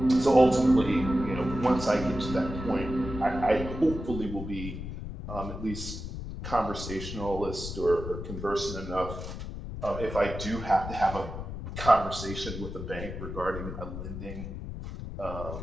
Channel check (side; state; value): left; noise; rumble, 8 dB below the sound